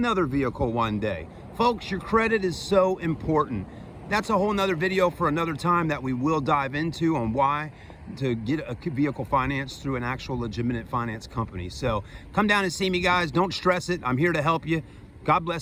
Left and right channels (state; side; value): identical; both; correlation 1.00